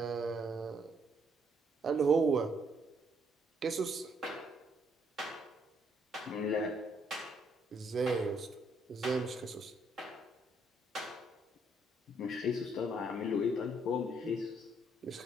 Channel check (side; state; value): both; normal; correlation 0.70